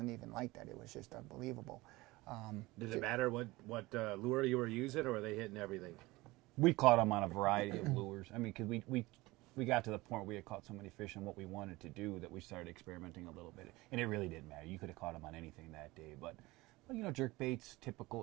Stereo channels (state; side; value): quieter; left; 20.8 dB